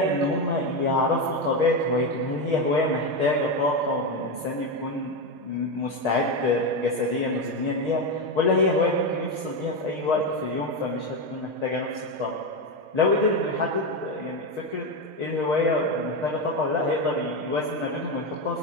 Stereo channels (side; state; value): left; late; 6.5 ms